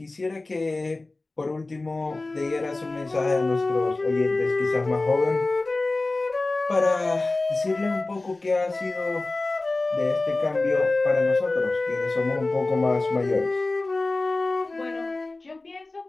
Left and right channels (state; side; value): quieter; right; 3.1 dB